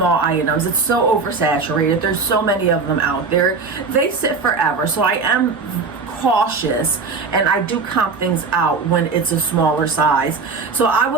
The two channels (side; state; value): left; quieter; 4.6 dB